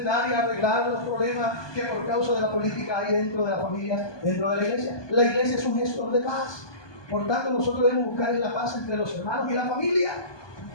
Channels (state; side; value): late; right; 1.2 ms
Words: y arreglar los problemas que por causa de la política hay dentro de las familias, dentro de la iglesia. La iglesia es un gestor de paz. Por tanto, nosotros debemos buscar la paz entre los hermanos y la familia.